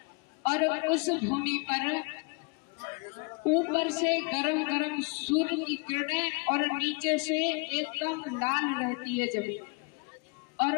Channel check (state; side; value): quieter; right; 32.4 dB